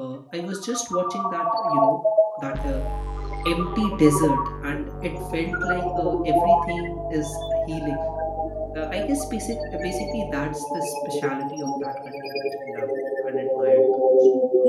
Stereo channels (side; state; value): both; identical; correlation 1.00